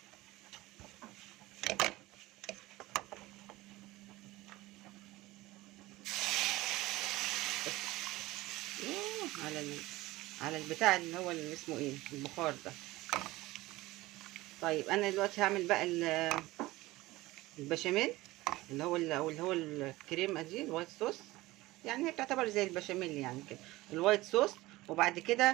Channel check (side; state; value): left; quieter; 18.9 dB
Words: على البتاع اللي هو اللي اسمه ايه، البخار ده. طيب انا دلوقتي هعمل بقى البشاميل، اللي هو الكريمه دي الوايت صوص، يعني هي بتعتبر زي البشاميل يعني كده، الوايت صوص. وبعد